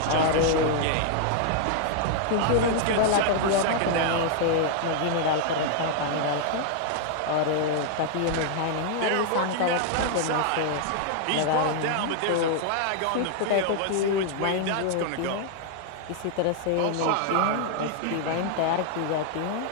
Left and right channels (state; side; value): different; both; correlation 0.00